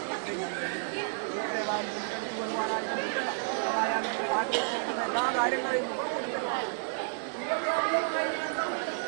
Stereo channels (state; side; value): silent; left; 57 dB below the other